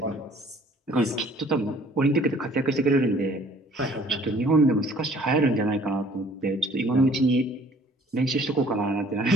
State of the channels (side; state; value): both; normal; correlation 0.56